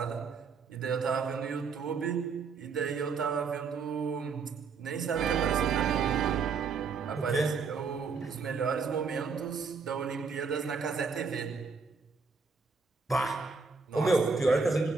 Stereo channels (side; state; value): left; quieter; 5.1 dB